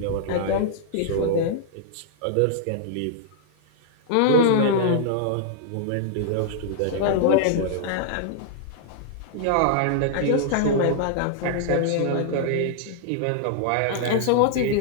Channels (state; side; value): different; both; correlation -0.01